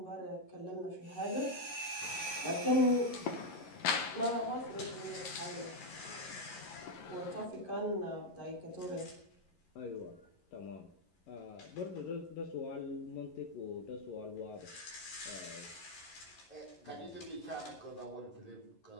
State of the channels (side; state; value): right; late; 11 ms